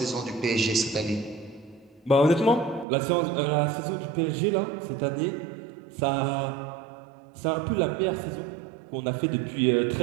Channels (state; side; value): drops out; left; at 2.9 s